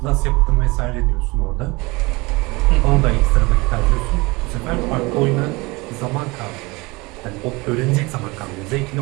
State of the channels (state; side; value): quieter; left; 24.4 dB